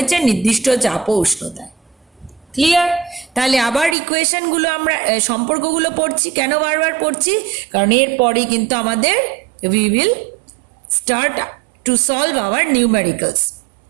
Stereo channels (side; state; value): left; drops out; at 4.0 s